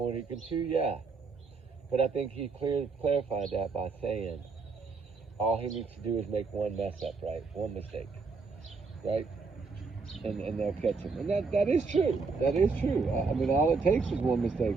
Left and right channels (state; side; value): quieter; left; 4.5 dB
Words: than he can chew? Yeah. But I think he clarified that by saying all he needs to do is make one mess up, right? One mistake, right? And they'll catch him. And that is true. That is true. I mean, all it takes is one mistake.